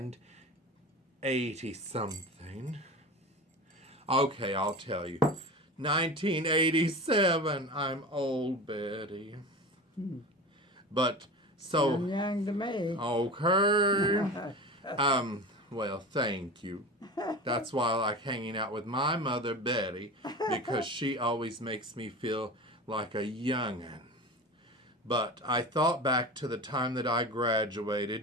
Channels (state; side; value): normal; both; correlation 0.31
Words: something. Okay, I'll tell you. 1987. I'm old, Betty. But so Sound young to me. okay. Well, thank you. That's why I like hanging out with my mother, Betty, because she always makes me feel like a young'un. But I thought back to the time that I